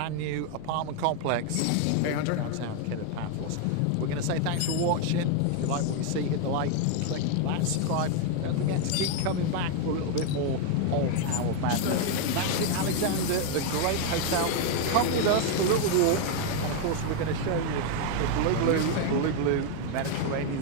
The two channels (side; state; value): both; different; correlation 0.01